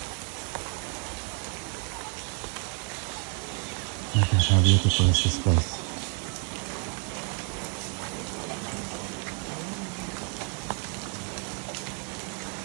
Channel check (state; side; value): quieter; left; 36.5 dB